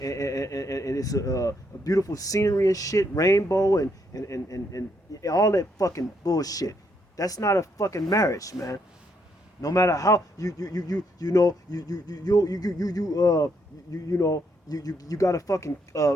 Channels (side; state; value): both; normal; correlation 0.75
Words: it's a beautiful scenery and shit, rainbow and all that fucking bullshit. That's not a fucking marriage, man. No matter how you got a fucking